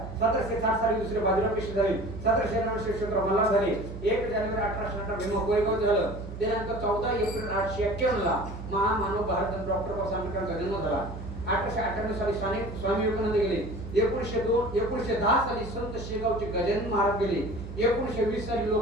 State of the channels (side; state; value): right; noise; hum, 10 dB below the sound